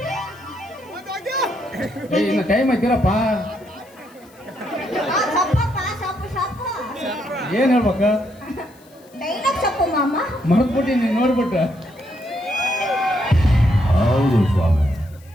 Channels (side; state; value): left; noise; hiss, 28 dB below the sound